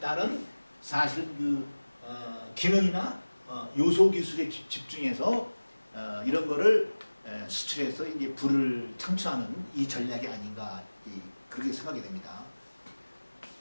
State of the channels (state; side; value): inverted; both; correlation -1.00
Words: 사실 그 기능이나 요소 기술에 집중해서 이런 거를 수출해서 이제 부를 창출하는 이 전략이 아닌가 그렇게 생각이 됩니다.